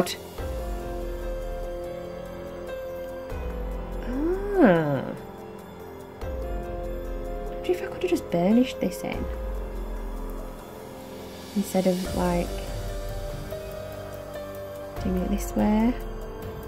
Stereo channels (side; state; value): both; identical; correlation 1.00